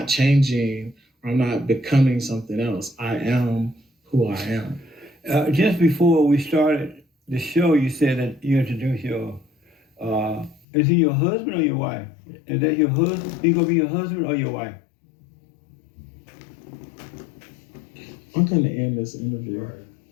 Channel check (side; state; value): right; drops out; at 10.6 s